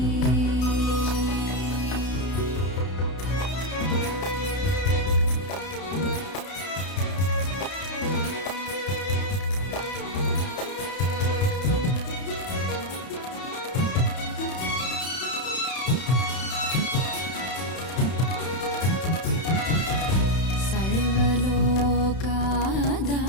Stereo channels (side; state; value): right; late; 31 ms